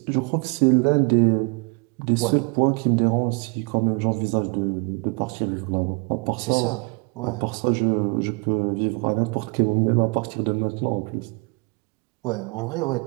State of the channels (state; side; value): quieter; left; 32.0 dB